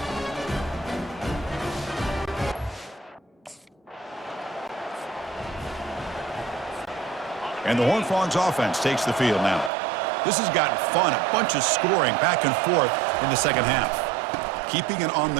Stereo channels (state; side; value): drops out; left; at 9.7 s